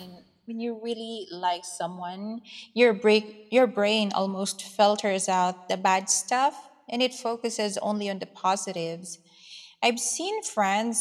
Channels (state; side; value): identical; both; correlation 1.00